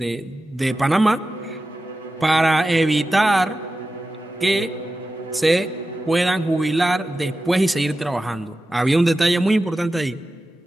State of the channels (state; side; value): normal; both; correlation 0.93